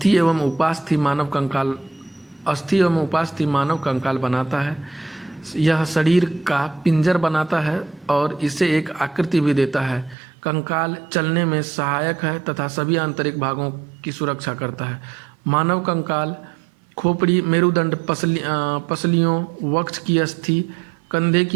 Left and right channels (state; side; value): drops out; left; at 10.2 s